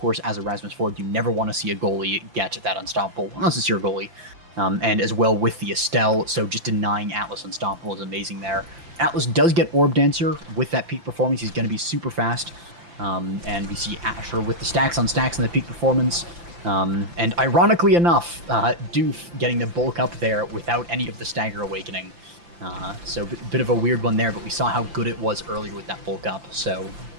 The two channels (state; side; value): late; left; 5.8 ms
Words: as a Rasmus forward, you never want to see a goalie get that Unstoppable, unless it's your goalie. And as well with the Estelle, so just denying Atlas Unstoppable is amazing there. Atlas does get Orb Dancer with that peak performance. He's going to be super fast. And we see Asher with the stacks on stacks and the peak performance. And ironically enough, Doof getting the bulk up there without any of the Stagger Awakening. So a bit of a weird one there, but we saw how good it was earlier with that bulk up. So